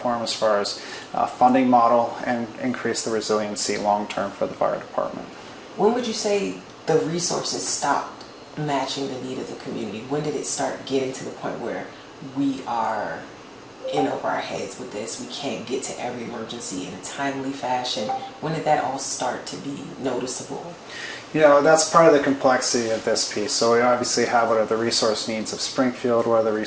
as far as funding model and increase the resiliency long term for the fire department. When would you say the resources stopped matching the need of the community? When did it start getting to the point where we are in over our heads with this? We can't get to every emergency in a timely fashion. When did that all start to be noticeable? You know, that's part of the complexity of this piece. So we obviously have what are the resource needs of Springfield, what are the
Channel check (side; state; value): both; identical; correlation 1.00